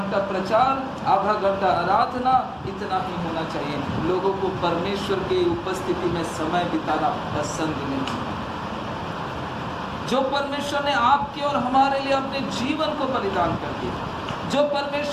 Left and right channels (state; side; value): identical; both; correlation 1.00